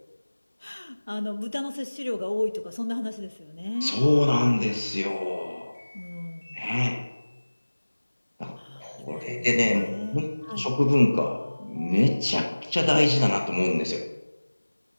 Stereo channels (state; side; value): inverted; both; correlation -1.00